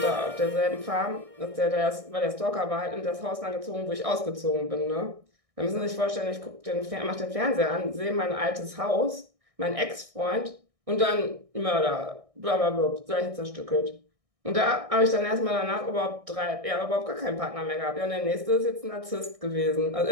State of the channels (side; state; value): left; late; 1.6 ms